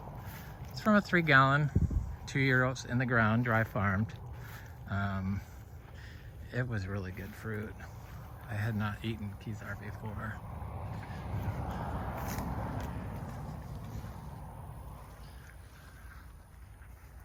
it's from a 3-gallon, 2-year-olds in the ground, dry farmed. It was really good fruit. I had not eaten Kizar before.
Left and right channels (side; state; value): both; identical; correlation 1.00